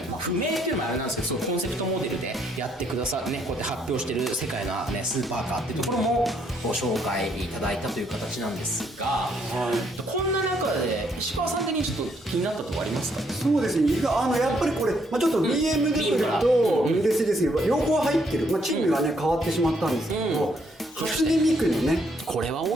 不明っていうのもあれなんですけど、そのコンセプトモデルでやってくださるね、こうやって発表してる世界のねスーパーカーっていうところもご紹介いただいたという形なんですが、こんな中で石川さん的にちょっと気になったところありますか？そうですね、やっぱりこれ、ちょっと BMW とメルセデス両方入ってる、チームがね変わってしまったんですけど、初音ミクのね、これは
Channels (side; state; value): both; normal; correlation 0.71